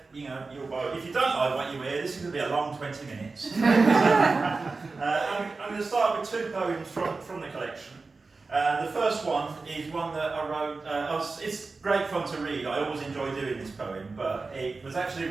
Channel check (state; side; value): quieter; left; 3.9 dB